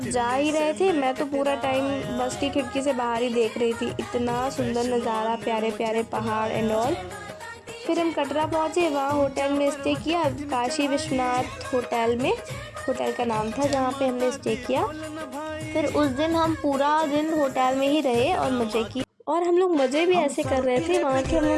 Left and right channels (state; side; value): identical; both; correlation 1.00